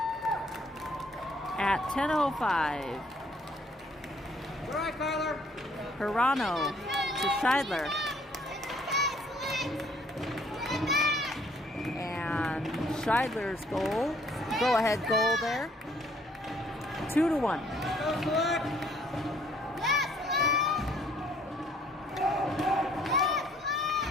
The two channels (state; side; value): normal; both; correlation 0.62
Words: at 10:05. All right, Kyler. Hirano to Scheidler. And Scheidler's goal, go-ahead goal there. 2-1. Go Select.